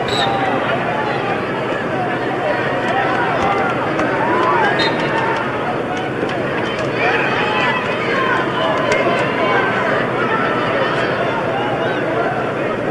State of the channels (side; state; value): both; identical; correlation 1.00